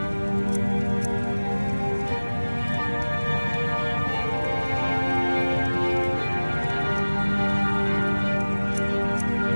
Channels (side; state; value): both; inverted; correlation -1.00